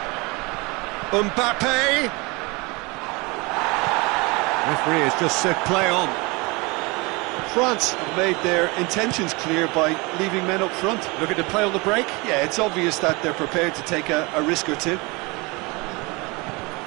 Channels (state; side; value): quieter; left; 26.3 dB